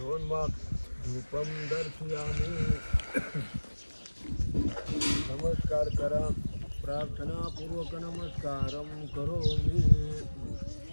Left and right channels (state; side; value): inverted; both; correlation -1.00